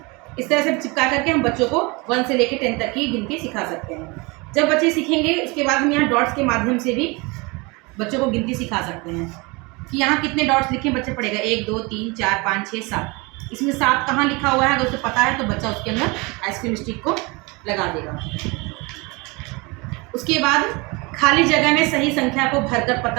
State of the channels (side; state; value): left; quieter; 26.8 dB